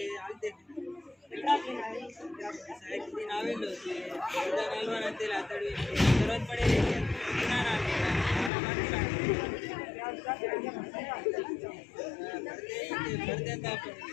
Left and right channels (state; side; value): drops out; right; at 8.5 s